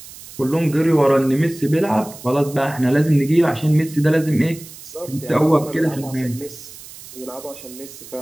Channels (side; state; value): right; noise; hiss, 17 dB below the sound